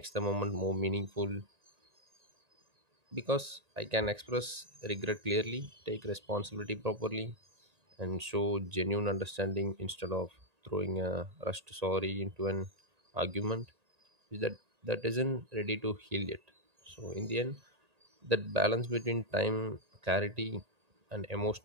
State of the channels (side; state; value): left; late; 1.8 ms